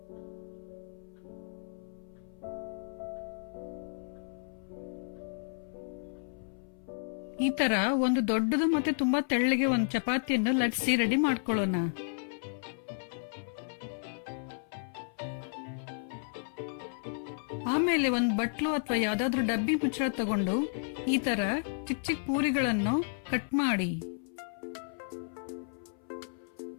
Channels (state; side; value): silent; right; 56 dB below the other